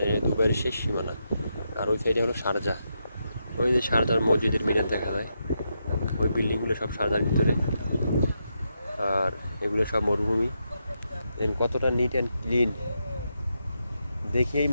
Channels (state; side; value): inverted; both; correlation -0.83